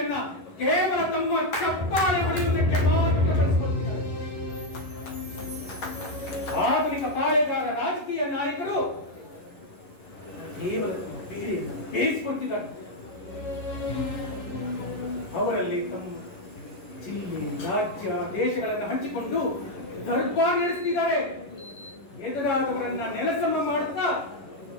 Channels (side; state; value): right; late; 11 ms